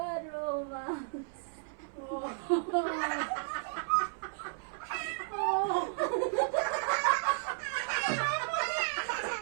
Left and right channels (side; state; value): left; silent; 55 dB below the other